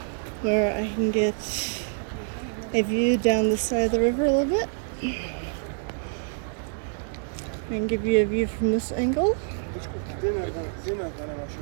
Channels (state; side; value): silent; left; 60 dB below the other